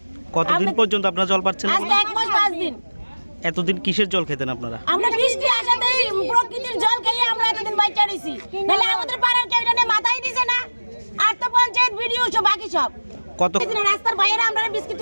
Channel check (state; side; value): inverted; both; correlation -1.00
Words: কতদিন পর্যন্ত আপনারা জল পাচ্ছেন? আজকে 1 মাস 5 দিন। এতদিন কিসের জল খেতেন আপনারা? আমরা বৃষ্টি আসাতেই প্রকৃতির জল খেয়ে আমরা এতদিন বাইচা রইছি, নাহলে আমাদের পাড়ার কেউ এটা মাথায় দিছে না। আর তো পঞ্চায়েত ভিডিও সব বাকি সব কত রাস্তার বাইরে আমরা বিস্কিট